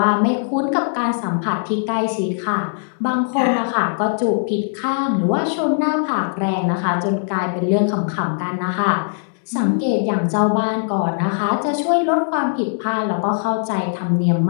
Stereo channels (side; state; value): right; silent; 66 dB below the other